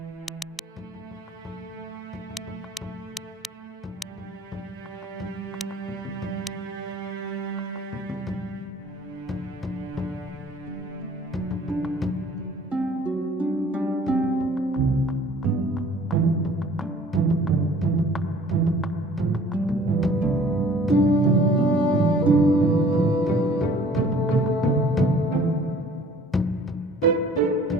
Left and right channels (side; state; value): both; normal; correlation 0.52